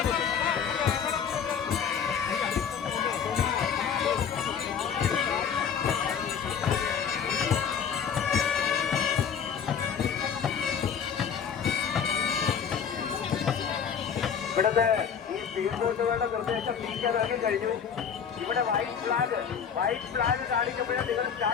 ഇവിടുത്തെ ഈ സ്പീഡ് ബോട്ടുകളുടെ നിർദ്ദേശം നീക്കാനാക്കി കഴിഞ്ഞു. ഇവിടെ വൈറ്റ് ഫ്ലാഗ് കാണിക്കുമ്പോഴേ നിങ്ങൾ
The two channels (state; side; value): quieter; right; 7.3 dB